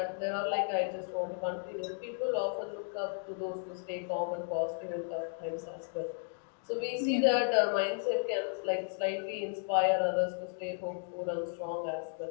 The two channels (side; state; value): right; silent; 55 dB below the other